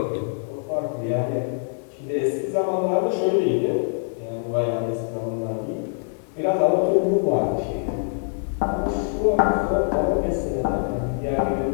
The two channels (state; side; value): silent; right; 63 dB below the other